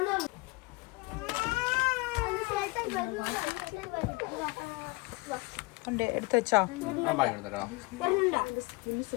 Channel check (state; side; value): quieter; right; 25.4 dB